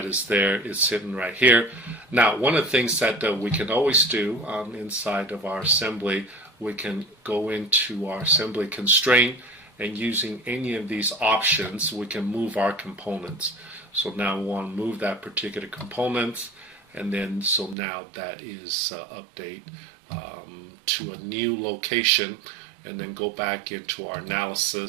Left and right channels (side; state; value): left; drops out; at 17.8 s